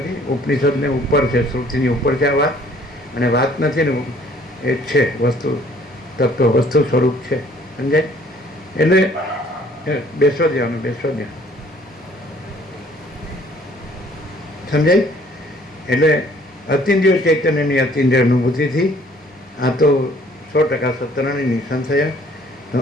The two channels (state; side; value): normal; both; correlation 0.58